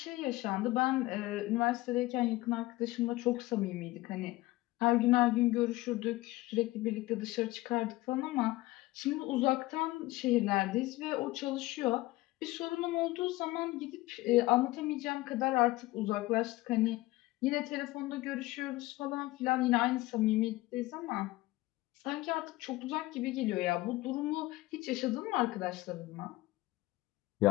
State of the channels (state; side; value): quieter; right; 18.9 dB